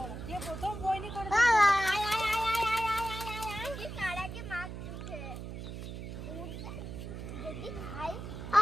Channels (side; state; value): right; noise; hum, 8 dB below the sound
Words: যে প্রথম বইনি করে